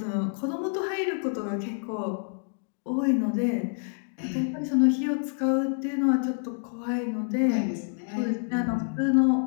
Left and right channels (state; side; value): silent; right; 60 dB below the other